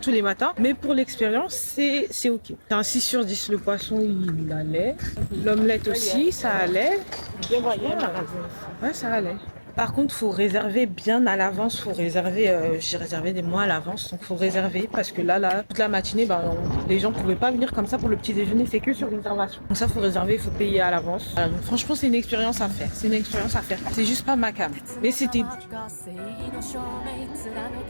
les matins. Mais pour l'expérience, c'est ok. C'est un 6 sur 10. Le poisson, il allait. L'omelette aussi, ça allait. Ouais, ça allait. Par contre, faut réserver bien à l'avance. J'ai réservé des mois à l'avance, donc faut réserver parce que là, toute la matinée, les gens pouvaient pas venir comme ça pour le petit déjeuner. C'est que sur réservation. Donc ça, faut réserver, il faut payer à l'avance. Voilà, donc franchement, c'est une expérience à faire. C'est juste pas ma cam, mais c'était.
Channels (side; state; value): both; inverted; correlation -1.00